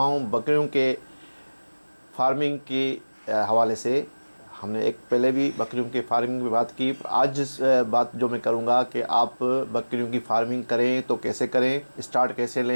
हूं बकरियों के फार्मिंग के हवाले से। हमने एक पहले भी बकरियों की फार्मिंग की बात की। आज बात जो मैं करूंगा कि आप बकरियों की फार्मिंग करें तो कैसे करें, स्टार्ट कैसे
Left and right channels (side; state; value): both; inverted; correlation -1.00